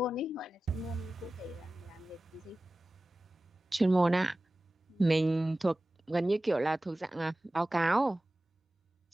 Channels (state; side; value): normal; both; correlation 0.96